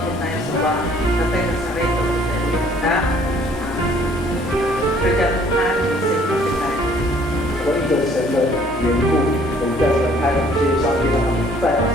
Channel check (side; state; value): both; normal; correlation 0.59